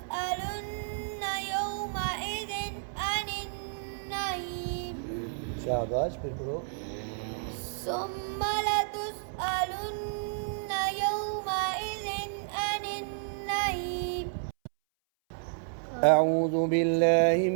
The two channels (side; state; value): left; silent; 57 dB below the other